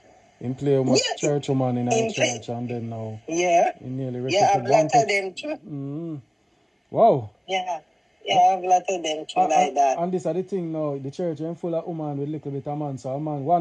In play with church woman in our church, and then now he nearly I've lot of them too. Wow. Yeah, I've lot of them too like that. And this is the thing now, the church is full of women with little bit of man. So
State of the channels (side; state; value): both; identical; correlation 1.00